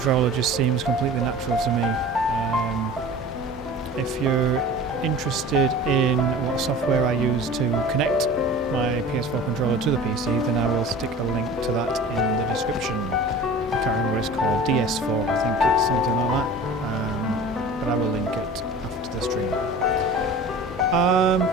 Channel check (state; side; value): normal; both; correlation 0.40